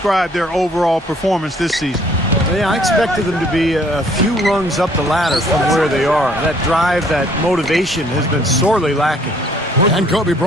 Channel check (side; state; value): both; normal; correlation 0.61